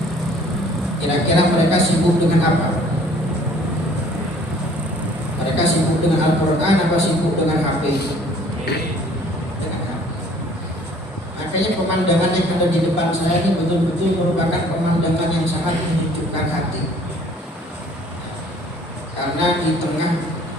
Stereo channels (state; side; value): normal; both; correlation 0.55